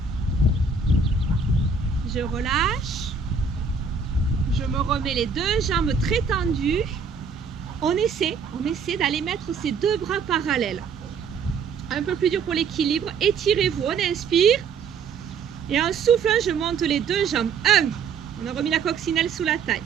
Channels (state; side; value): quieter; left; 5.4 dB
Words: je relâche. Je me remets les deux jambes très tendues. On essaie d'aller mettre ces deux bras parallèles. Un peu plus dur pour l'équilibre. Étirez-vous, on inspire. Et en soufflant, je monte les deux jambes. 1, on a remis la coccinelle sous la taille.